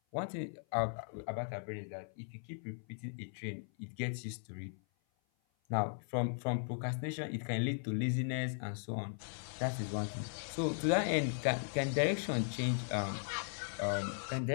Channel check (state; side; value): silent; right; 53 dB below the other